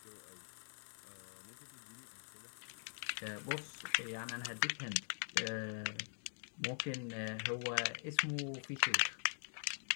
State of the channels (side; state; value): right; silent; digital silence